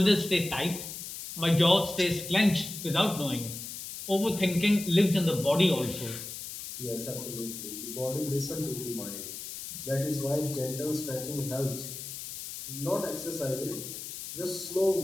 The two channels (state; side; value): noise; left; hiss, 9 dB below the sound